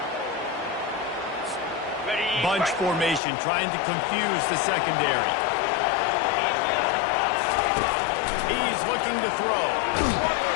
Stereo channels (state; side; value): drops out; right; at 3.2 s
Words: Bunch formation, trying to confuse the secondary. He's looking to throw.